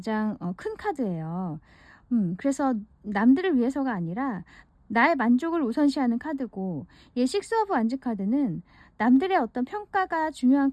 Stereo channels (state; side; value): identical; both; correlation 1.00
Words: 큰 카드예요. 그래서 남들을 위해서가 아니라 나의 만족을 우선시하는 카드고, 이 식스 오브 완즈 카드는 남들의 어떤 평가가 중요한